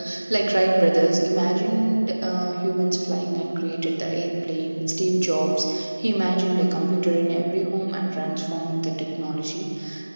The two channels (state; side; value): inverted; both; correlation -1.00